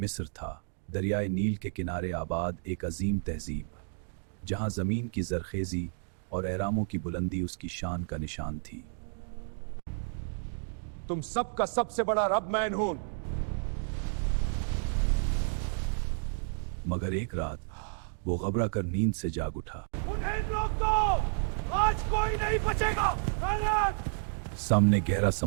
था, दरियाए नील के किनारे आबाद एक अजीम तहजीब, जहां ज़मीन की ज़रखेज़ी और एहरामों की बुलंदी उसकी शान का निशान थी। तुम सबका सबसे बड़ा रब मैं हूं। मगर एक रात वो घबरा कर नींद से जाग उठा। उन्हें रोक दो, आज कोई नहीं बचेगा। सामने गहरा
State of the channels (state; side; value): silent; left; digital silence